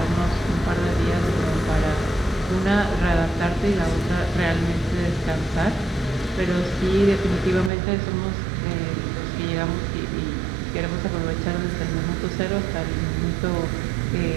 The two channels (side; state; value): left; drops out; at 7.7 s